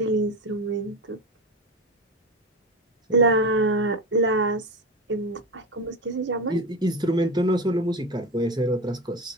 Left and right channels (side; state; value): both; normal; correlation 0.21